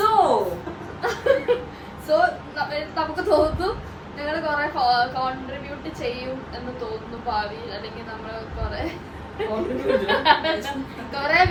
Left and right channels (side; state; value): both; identical; correlation 1.00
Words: നമുക്ക് തോന്നുന്നു ഞങ്ങൾ കുറെ കോൺട്രിബ്യൂട്ട് ചെയ്യും എന്ന് തോന്നുന്നു ഭാവിയിൽ. അല്ലെങ്കിൽ നമ്മൾ കുറെ